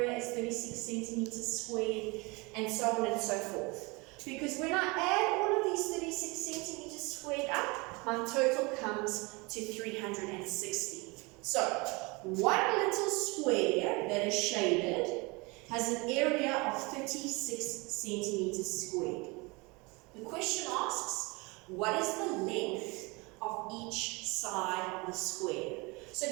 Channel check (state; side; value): quieter; left; 26.6 dB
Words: is 36 centimeters squared, and so on and so forth. Because when I add all of these 36 centimeters squared up, my total comes to 360. So one little square that is shaded has an area of 36 centimeters squared. The question asks, what is the length of each side of the square? So